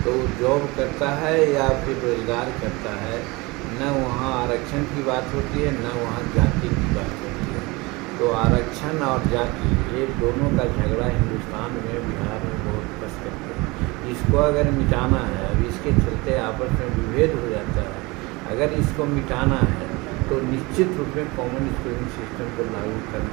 तो जॉब करता है या फिर रोजगार करता है। न वहाँ आरक्षण की बात होती है, न वहाँ जाति की बात होती है। तो आरक्षण और जाति, ये दोनों का झगड़ा हिंदुस्तान में, बिहार में बहुत कस करते हैं। इसको अगर मिटाना है, अब इसके चलते आपस में विभेद हो जाता है, अगर इसको मिटाना है तो निश्चित रूप में कॉमन स्कूलिंग सिस्टम को लागू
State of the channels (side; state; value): left; quieter; 24.2 dB